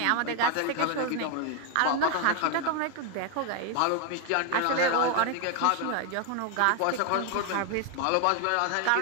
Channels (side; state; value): both; different; correlation 0.01